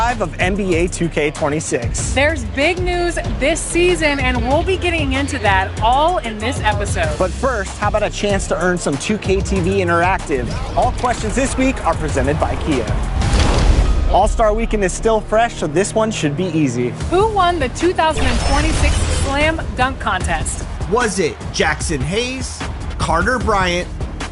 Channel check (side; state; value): both; identical; correlation 1.00